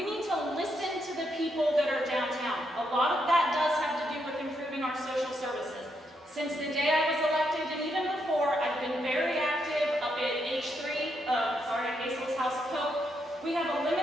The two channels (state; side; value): normal; both; correlation 0.79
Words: need to listen to the people that are downtown. A lot of that does have to do with improving our social services. Since the day I was elected, and even before, I've been very active up at Hazel's House of Hope. We have a